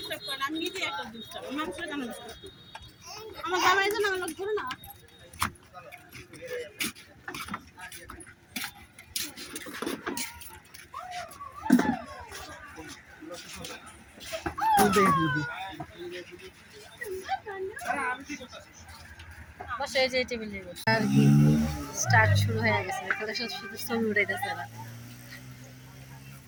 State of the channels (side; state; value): both; identical; correlation 1.00